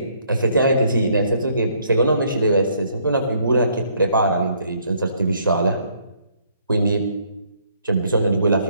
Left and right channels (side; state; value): both; inverted; correlation -0.67